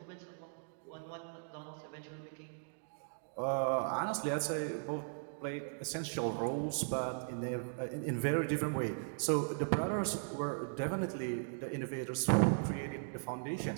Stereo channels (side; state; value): left; silent; digital silence